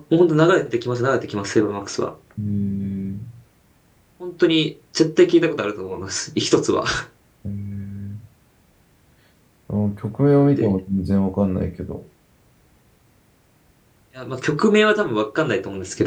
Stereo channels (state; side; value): identical; both; correlation 1.00